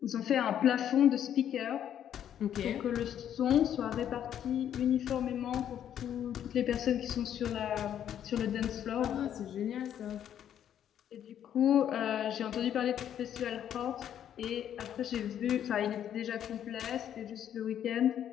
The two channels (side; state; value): right; quieter; 10.0 dB